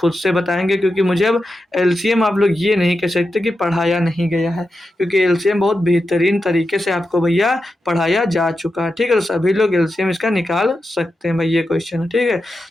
से बताएंगे, क्योंकि मुझे अब एलसीएम आप लोग ये नहीं कह सकते कि पढ़ाया नहीं गया है, क्योंकि एलसीएम बहुत बेहतरीन तरीके से आपको भैया पढ़ाया जा चुका है। ठीक है, तो सभी लोग एलसीएम इसका निकाल सकते हैं भाई, ये क्वेश्चन है। ठीक है,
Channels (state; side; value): normal; both; correlation 0.89